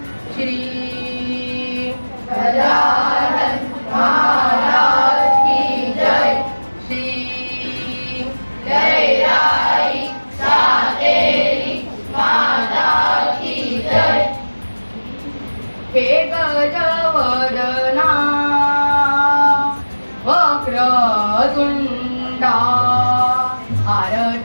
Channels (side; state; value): both; inverted; correlation -1.00